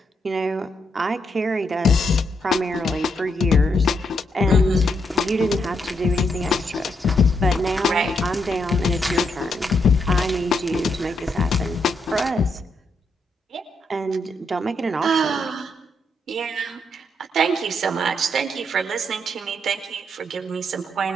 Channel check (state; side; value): normal; both; correlation 0.79